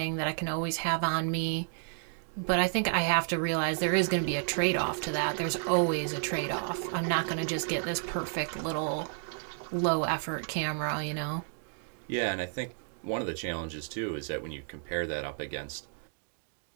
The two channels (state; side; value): silent; left; 57 dB below the other